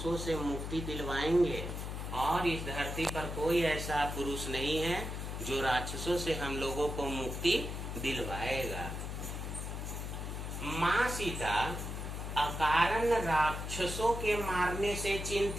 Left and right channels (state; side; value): noise; left; hum, 5 dB below the sound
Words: से मुक्ति दिलवाएंगे, और इस धरती पर कोई ऐसा पुरुष नहीं है जो राक्षसों से हम लोगों को मुक्ति दिलवाएगा। माँ सीता अकारण राक्षसों के मारने से